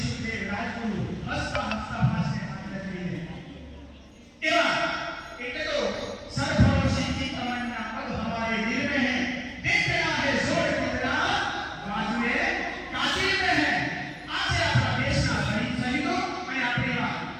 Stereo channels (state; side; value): identical; both; correlation 1.00